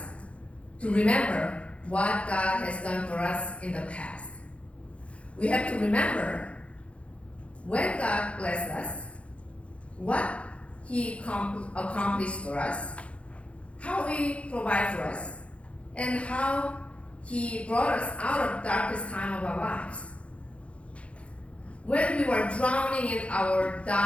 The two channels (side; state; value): right; late; 0.062 ms